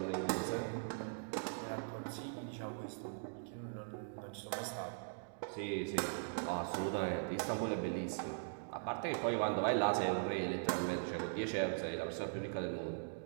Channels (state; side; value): silent; left; digital silence